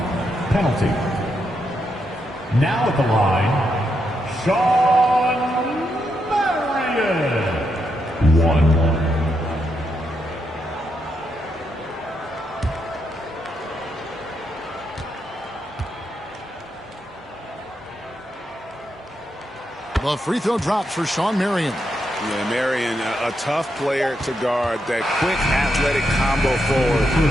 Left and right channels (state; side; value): normal; both; correlation 0.82